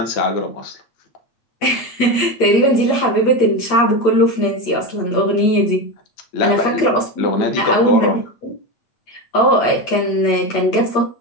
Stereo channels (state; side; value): late; right; 8.5 ms